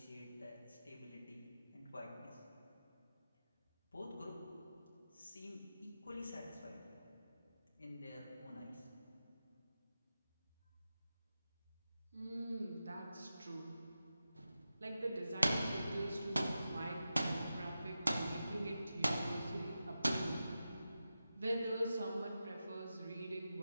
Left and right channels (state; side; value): inverted; both; correlation -0.92